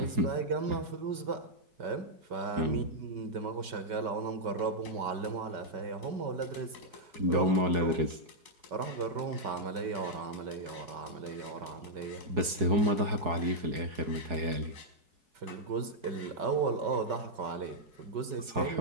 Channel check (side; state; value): left; late; 4.7 ms